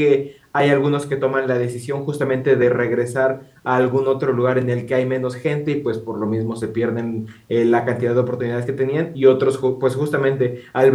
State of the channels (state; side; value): identical; both; correlation 1.00